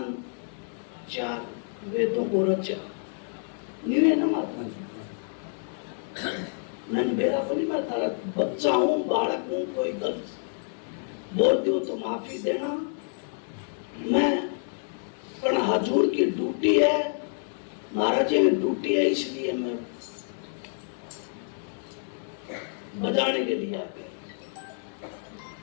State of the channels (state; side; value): silent; right; digital silence